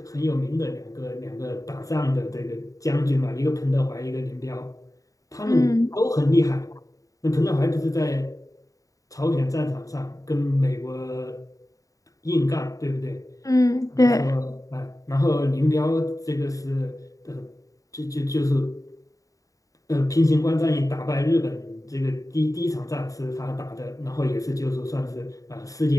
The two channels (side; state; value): right; late; 0.16 ms